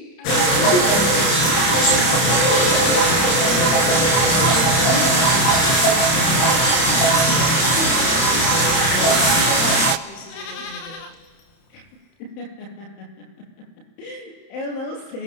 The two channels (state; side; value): late; right; 31 ms